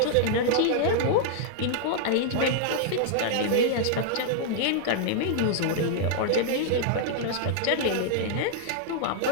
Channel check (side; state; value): both; different; correlation -0.01